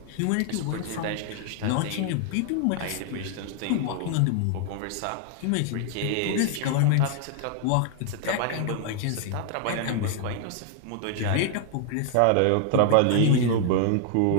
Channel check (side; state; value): both; different; correlation 0.00